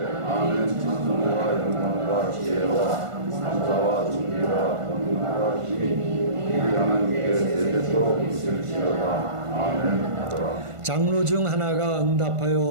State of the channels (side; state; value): left; late; 1.5 ms